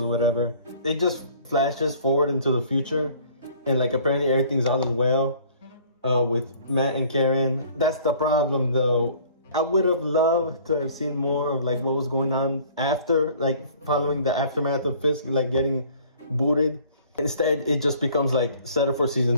whatever. It just flashes forward into the future. And like apparently everything's all as well with Matt and Karen. That's the problem though. I would have loved to have seen more of like what was going on after, like following the aftermath of Fisk like getting booted. Instead, it just becomes like set up for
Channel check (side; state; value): both; inverted; correlation -0.53